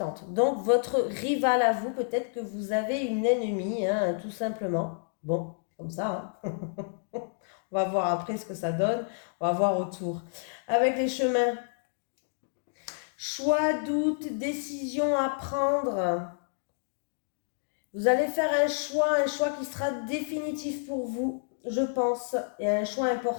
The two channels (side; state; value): right; silent; digital silence